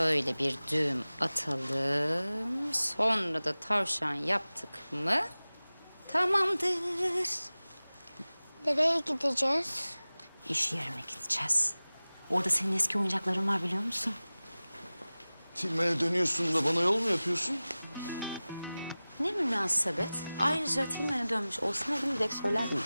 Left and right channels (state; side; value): inverted; both; correlation -0.98